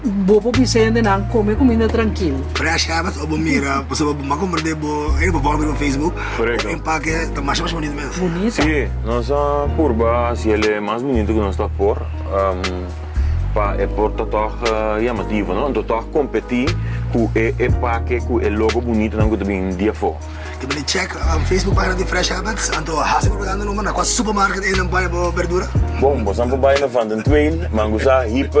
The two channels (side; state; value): both; identical; correlation 1.00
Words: Bobo Vicente não come comida tranquilo. Fresh Habits, ou mira, você vai comprar no Facebook. Correto. O empaque está mais bonito mesmo. Bonito. Sim, nossa curva, se ele é mais bonito que nós está por, é por total chamativo, não? Então total competir com o empaque, com o logo bonito, não que também dia for. Eu vou check Facebook página de Fresh Habits, então há sempre propaganda no na quase supermarket e não vai verdura. Bom, você não vai na Van den Tweil, mangusa